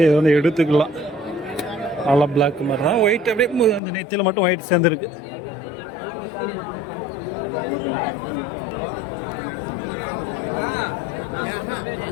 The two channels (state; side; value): drops out; right; at 3.8 s